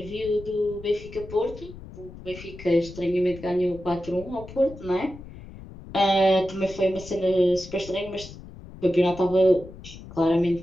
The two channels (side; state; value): left; noise; rumble, 16 dB below the sound